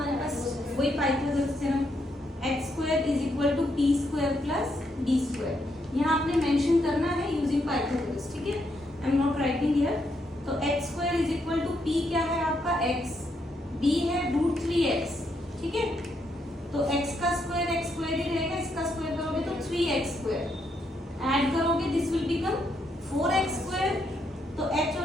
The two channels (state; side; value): normal; both; correlation 0.77